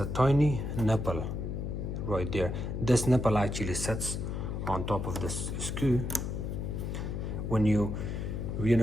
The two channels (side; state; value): left; noise; hum, 3 dB below the sound